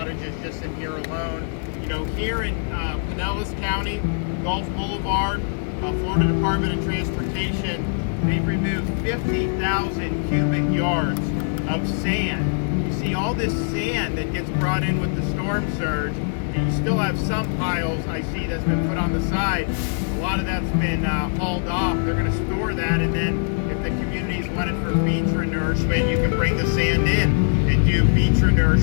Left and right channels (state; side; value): silent; right; digital silence